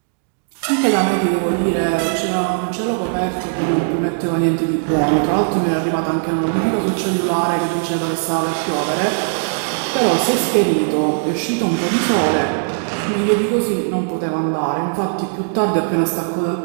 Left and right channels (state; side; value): silent; left; digital silence